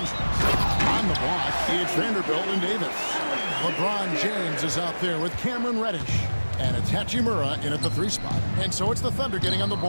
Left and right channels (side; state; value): both; inverted; correlation -1.00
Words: On the block, it's Vanderbilt and Davis. LeBron James is out there with Cameron Reddish. And it's Hachimura in at the 3 spot. And so it's the Thunder getting on the